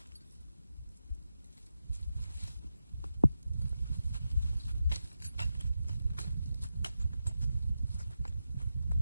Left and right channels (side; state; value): both; inverted; correlation -0.89